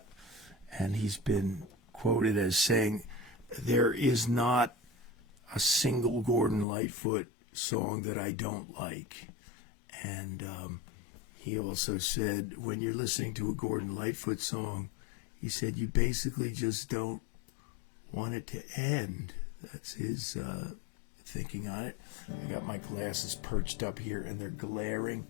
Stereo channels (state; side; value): drops out; right; at 6.7 s